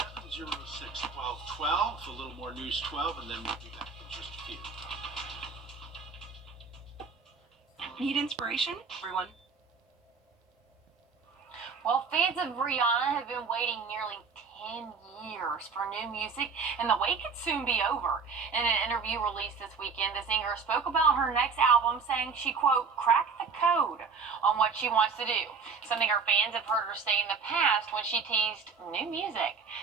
A little more News 12, and then we'll be back in just a few. Need inspiration, everyone? Well, fans of Rihanna have been waiting nearly 10 years for new music, and the wait could soon be over. In an interview released this weekend, the singer spoke about her next album, saying she, quote, cracked the code on what she wants to do, something her fans have heard her say in the past when she teased new music.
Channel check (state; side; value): quieter; left; 5.2 dB